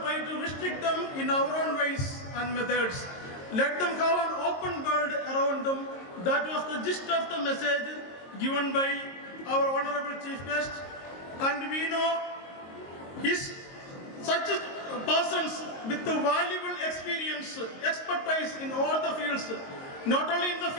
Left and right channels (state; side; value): late; right; 22 ms